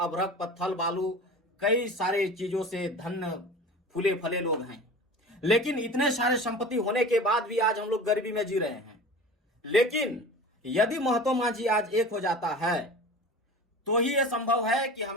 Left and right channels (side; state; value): both; normal; correlation 0.37